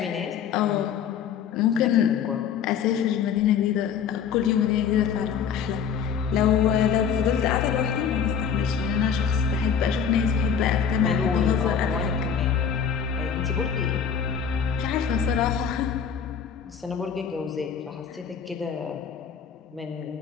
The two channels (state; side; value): quieter; right; 7.4 dB